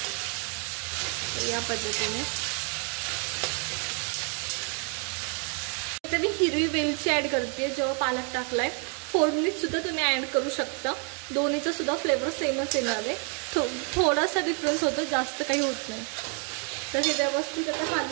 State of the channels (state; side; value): quieter; left; 39.8 dB